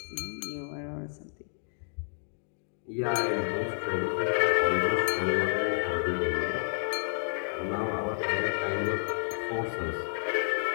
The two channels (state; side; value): silent; right; digital silence